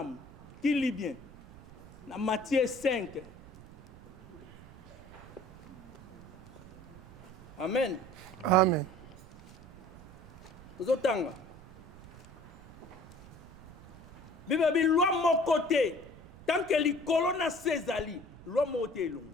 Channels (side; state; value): right; noise; rumble, 20 dB below the sound